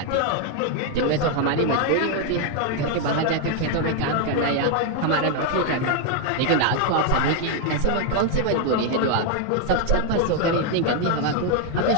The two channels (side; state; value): both; different; correlation 0.01